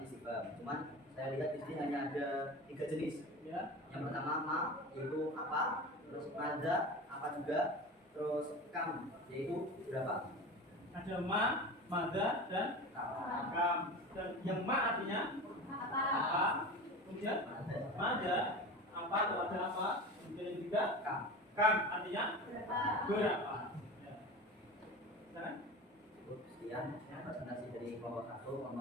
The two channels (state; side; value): normal; both; correlation 0.31